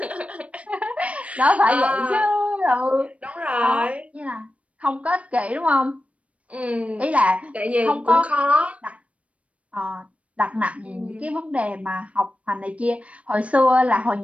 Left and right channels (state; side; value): late; left; 0.064 ms